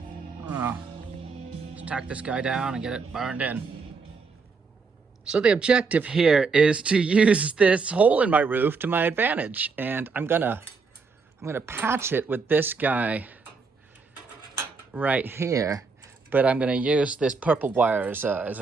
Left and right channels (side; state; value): left; quieter; 4.7 dB